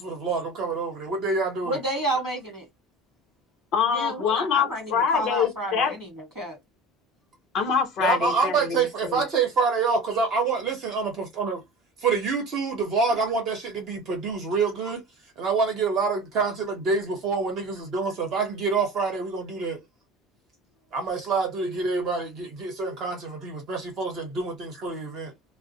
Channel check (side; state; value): both; normal; correlation 0.35